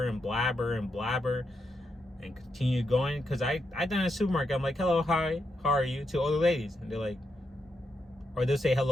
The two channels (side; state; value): both; normal; correlation 0.83